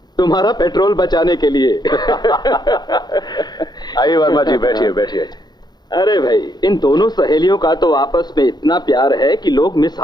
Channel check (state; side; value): late; right; 0.20 ms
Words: तुम्हारा पेट्रोल बचाने के लिए। आइए वर्मा जी, बैठिए बैठिए। अरे भाई, इन दोनों सहेलियों का तो आपस में इतना प्यार है कि लोग